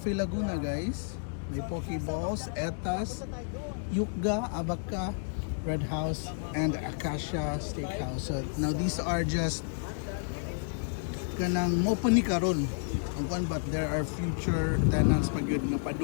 Laguna, guys. May Pokeballs, Etas, Yukga, Abaka, Red House, and Acacia Steakhouse. So now these are just kanang open ni karon ang kwan, but there are future tenants pag yun nga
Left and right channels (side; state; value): right; silent; digital silence